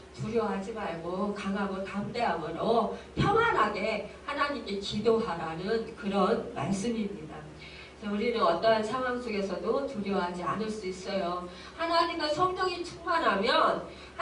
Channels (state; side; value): identical; both; correlation 1.00